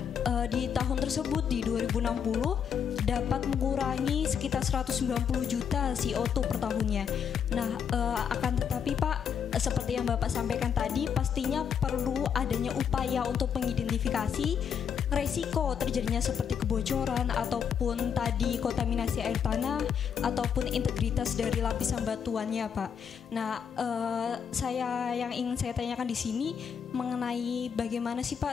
di tahun tersebut di 2060 dapat mengurangi sekitar 190 juta CO2 per tahunnya. Nah, akan tetapi Pak, seperti yang Bapak sampaikan tadi, pastinya perlu adanya upaya untuk mengidentifikasi resiko terjadinya seperti kebocoran ataupun tadi kontaminasi air tanah ataupun integritas dari lapisan batuannya, Pak. Nah, yang ingin saya tanyakan di sini mengenai bagaimana sih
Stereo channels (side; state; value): right; quieter; 7.5 dB